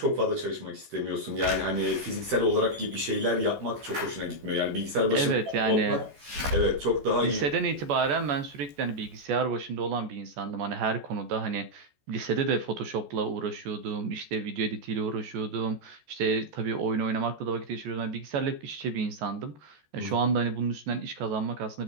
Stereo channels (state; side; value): late; left; 14 ms